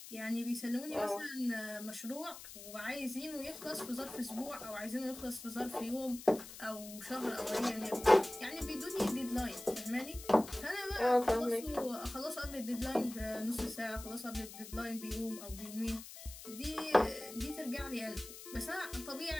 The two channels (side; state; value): left; noise; hiss, 13 dB below the sound